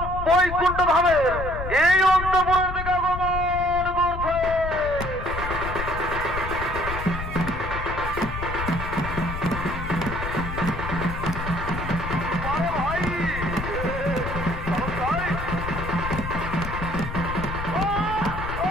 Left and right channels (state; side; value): noise; left; rumble, 6 dB below the sound